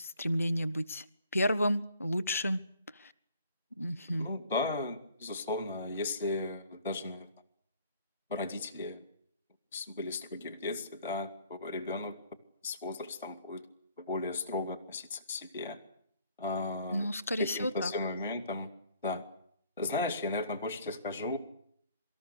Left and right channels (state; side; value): inverted; both; correlation -0.59